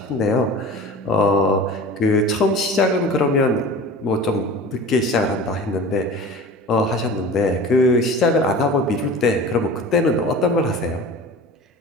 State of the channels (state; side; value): normal; both; correlation 0.37